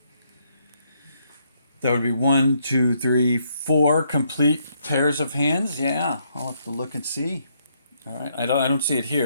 That would be 1, 2, 3, 4 complete pairs of hands. Yeah, I'll have to look and see. All right, I don't see it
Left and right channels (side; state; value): both; inverted; correlation -0.73